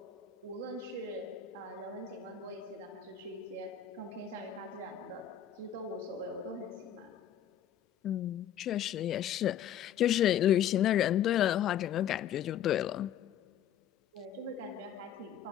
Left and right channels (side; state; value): right; quieter; 10.0 dB